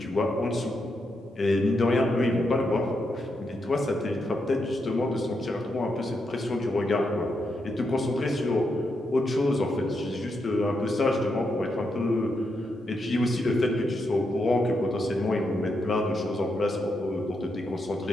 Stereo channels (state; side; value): normal; both; correlation 0.82